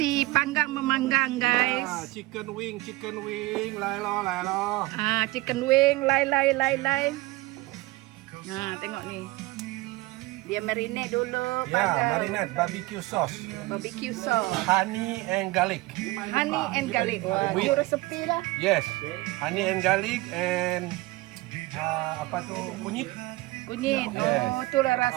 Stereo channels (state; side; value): quieter; left; 20.4 dB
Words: panggang memanggang, guys. Chicken wing, lai lo. Chicken wing, lai. Tengok ni. Dia marinate dulu. Ya, marinade barbecue sauce. Barbecue sauce. Honey and garlic. Honey and garlic. Wah, With- itu resepi lah. Yes, honey and garlic and apa tu kunyit. Kunyit. Yes. Oh, itulah